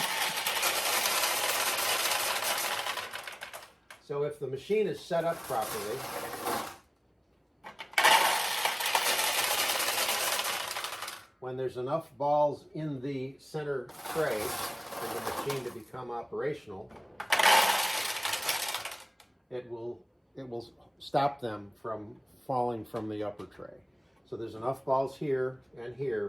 if the machine is set up properly, when there's enough balls in the center tray for the machine to become operational, it will it will stop them from falling from the upper tray. So there's enough balls here and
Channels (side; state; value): both; identical; correlation 1.00